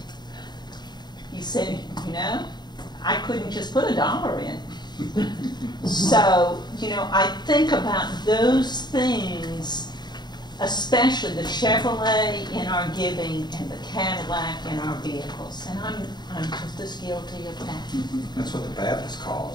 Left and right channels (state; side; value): late; right; 0.21 ms